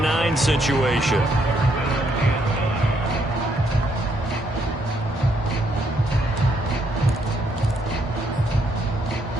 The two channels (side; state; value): both; normal; correlation 0.73